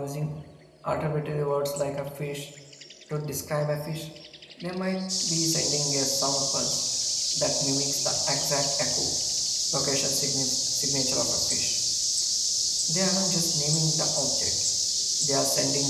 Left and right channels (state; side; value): identical; both; correlation 1.00